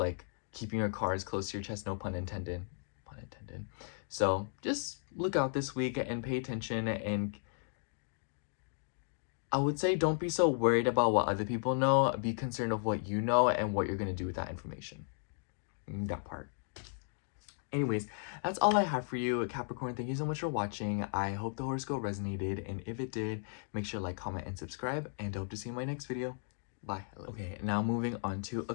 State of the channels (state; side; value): silent; right; digital silence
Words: keeping your cards close to your chest, no pun intended. Pun intended. So just look out this week and pay attention, and I would say don't be so worried about what other people know. Be concerned of what you know and what you're going to do with that information. That part. Anyways, that's all I have for you, Capricorn. Thank you so much for watching. I hope the horoscope resonated, and if it did, make sure to like, comment, and subscribe, and I hope to see you in my next video. Bye. Bye. Okay, now moving on to